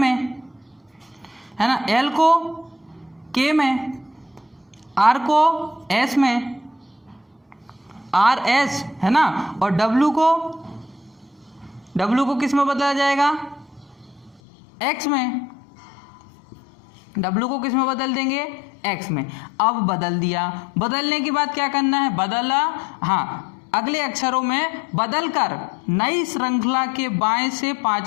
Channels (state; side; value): drops out; right; at 14.4 s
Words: है ना, एल को के में, आर को एस में, आर एस, है ना, और डब्लू को किस में बदला जाएगा, एक्स में। डब्लू को किस में बदल देंगे, एक्स में। अब बदल दिया, बदलने के बाद क्या करना है, बदला, हाँ, अगले अक्षरों में बदल कर नई श्रृंखला के बाएं से